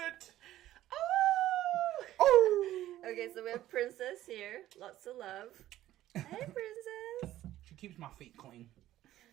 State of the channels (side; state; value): left; quieter; 13.9 dB